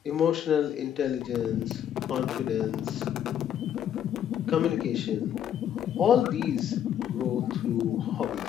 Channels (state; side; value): quieter; right; 9.9 dB